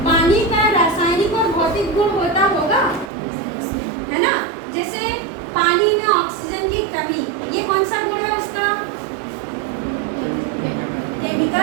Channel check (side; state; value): left; drops out; at 3.1 s